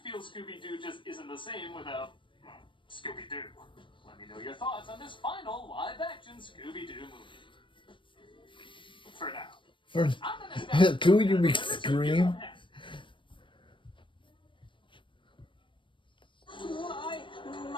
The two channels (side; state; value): right; late; 0.24 ms